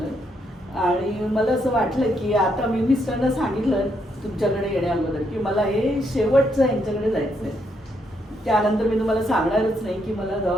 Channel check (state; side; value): normal; both; correlation 0.76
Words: आणि मला असं वाटलं की आता मी मिस्टरना सांगितलं तुमच्याकडे येण्या अगोदर की मला हे शेवटचं यांच्याकडे जायचं आहे. त्यानंतर मी तुम्हाला सांगणारच नाही की मला